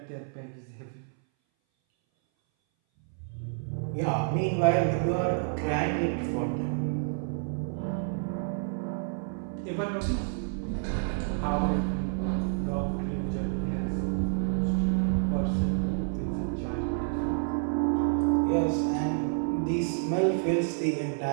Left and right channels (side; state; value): left; silent; 58 dB below the other